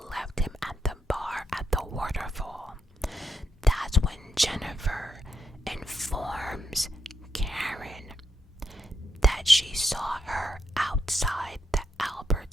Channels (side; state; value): both; normal; correlation 0.81